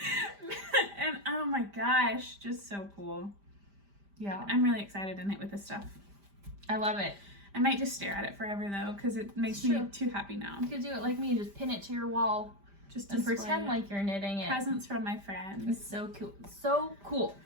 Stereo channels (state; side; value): late; left; 5.0 ms